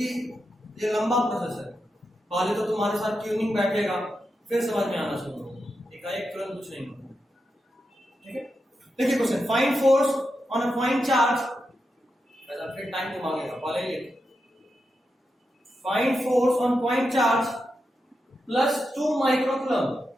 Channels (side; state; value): both; normal; correlation 0.87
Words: ये लंबा प्रोसेस है। पहले तो तुम्हारे साथ ट्यूनिंग बैठेगा, फिर समझ में आना शुरू होगा, एकाएक तुरंत कुछ नहीं होगा, ठीक है। देखिए question, find force on a point charge, ऐसा फिर टाइम को मांगेगा, पहले ही find force on point charge plus 2 microcoulomb,